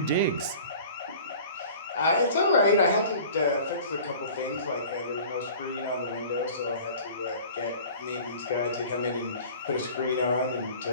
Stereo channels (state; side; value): inverted; both; correlation -0.44